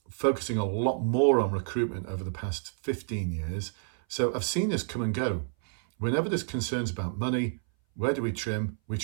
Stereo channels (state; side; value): silent; left; 58 dB below the other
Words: focusing a lot more on recruitment over the past 15 years. So I've seen this come and go. Whenever there's concerns about money, where do we trim? We